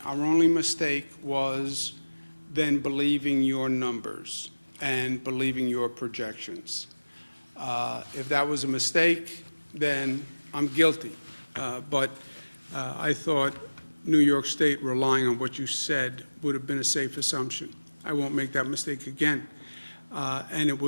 Our only mistake was then believing your numbers and believing your projections. If that was a mistake, then I'm guilty. But I thought New York State relying on what you said would have been a safe assumption. I won't make that mistake again. And it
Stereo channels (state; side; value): inverted; both; correlation -1.00